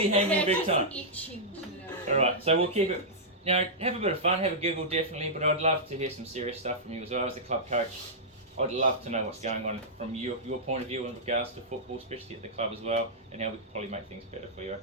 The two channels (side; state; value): both; normal; correlation -0.11